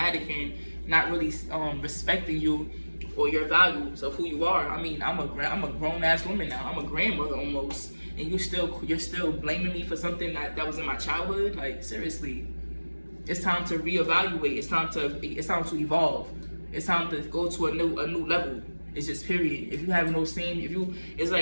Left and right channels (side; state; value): both; inverted; correlation -1.00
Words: and not really respecting you or your values of who you are. I mean, I'm a grown ass woman now. I'm a grandmother almost, and you're still blaming me for something that was in my childhood. Like, seriously, it's time to reevaluate. It's time to evolve. It's time to go to a new level. It's just period. If you have no it's